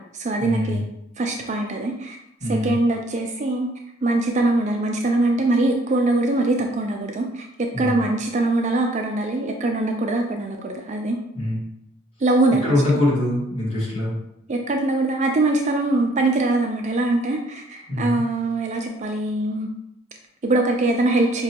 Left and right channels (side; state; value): both; normal; correlation 0.61